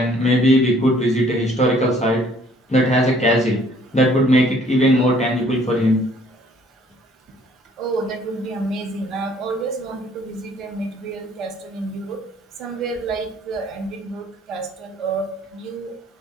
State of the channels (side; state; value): both; normal; correlation 0.59